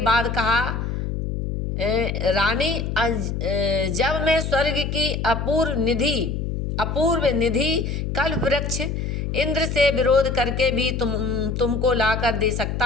कहा, रानी, जब मैं स्वर्ग की अपूर्व निधि कल्प वृक्ष इंद्र से विरोध करके भी तुमको लाकर दे सकता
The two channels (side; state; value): left; noise; hum, 3 dB below the sound